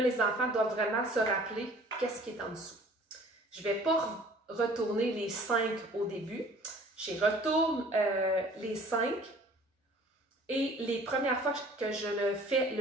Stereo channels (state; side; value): normal; both; correlation 0.51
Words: les enfants doivent vraiment se rappeler qu'est-ce qui est en dessous. Je ne vais pas retourner les 5 au début. Je retourne les 5 et les premières fois que je le fais,